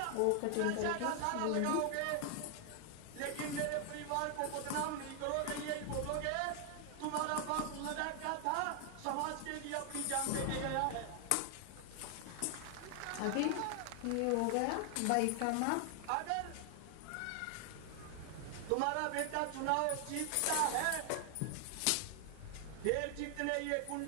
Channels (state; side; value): different; both; correlation 0.00